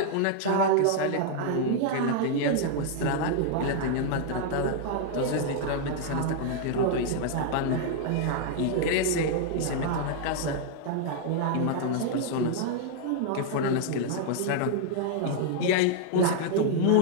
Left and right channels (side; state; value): both; different; correlation -0.01